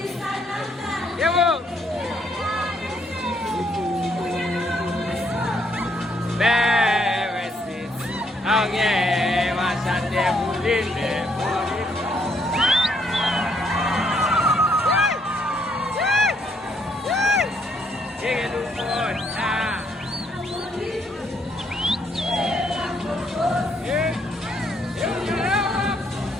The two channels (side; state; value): both; normal; correlation 0.71